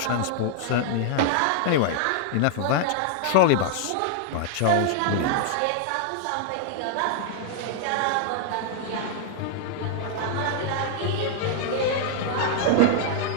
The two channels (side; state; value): both; different; correlation 0.00